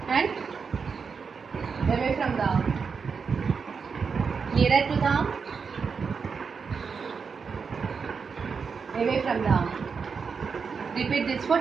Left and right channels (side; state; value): left; quieter; 5.6 dB